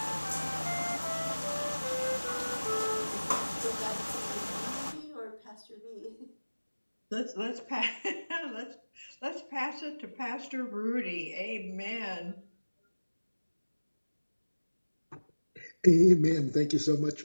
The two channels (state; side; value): inverted; both; correlation -1.00